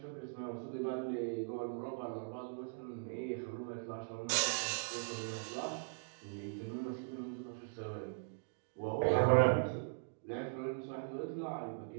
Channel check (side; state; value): left; silent; digital silence